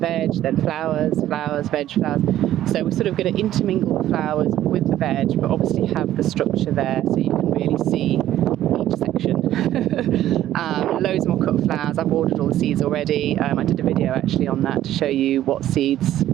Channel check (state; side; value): quieter; left; 12.9 dB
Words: then flowers, flowers, veg, flowers. So we're sort of going to intermingle the flowers with the veg, but obviously have the structure there so you can really see each section. Loads more cut flowers. I've ordered all the seeds already. I did a video actually on that to show you what seeds